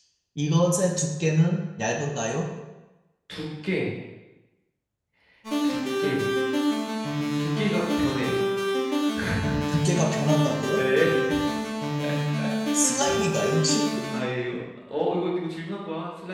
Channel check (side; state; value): both; identical; correlation 1.00